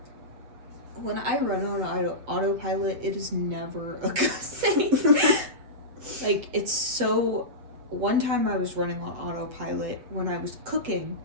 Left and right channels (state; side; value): late; left; 7.6 ms